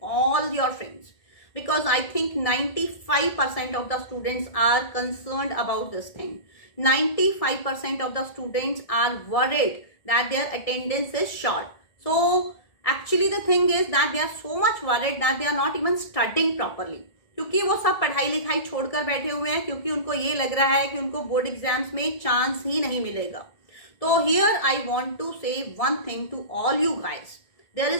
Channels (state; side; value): late; right; 1.8 ms